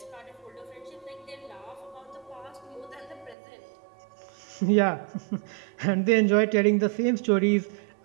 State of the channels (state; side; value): drops out; left; at 3.4 s